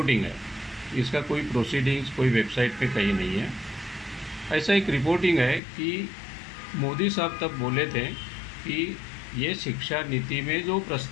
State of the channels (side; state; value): right; drops out; at 5.6 s